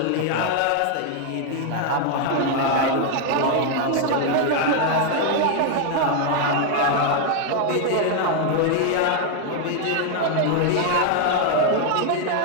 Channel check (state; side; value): different; both; correlation 0.00